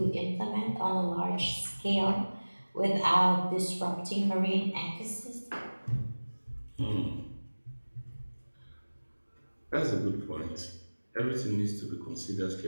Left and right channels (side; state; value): both; inverted; correlation -1.00